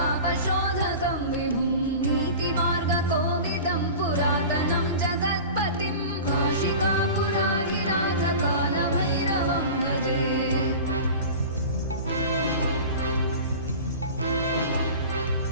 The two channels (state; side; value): inverted; both; correlation -0.36